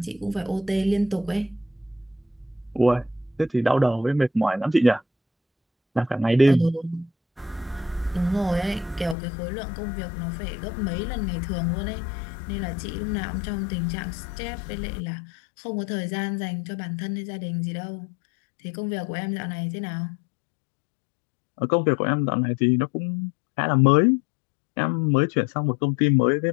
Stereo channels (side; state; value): right; drops out; at 9.2 s